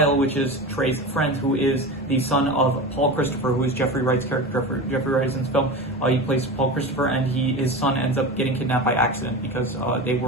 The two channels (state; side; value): normal; both; correlation 0.27